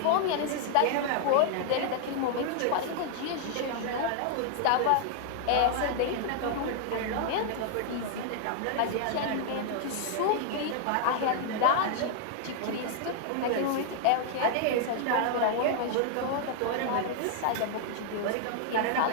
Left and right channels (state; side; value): different; both; correlation -0.01